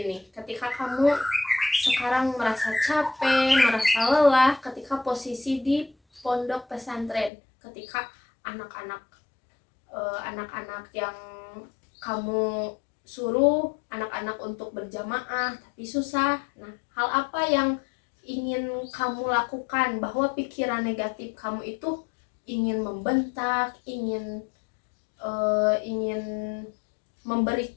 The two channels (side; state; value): right; drops out; at 7.3 s